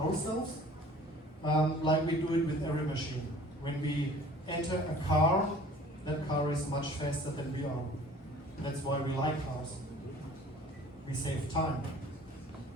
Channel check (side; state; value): both; normal; correlation 0.49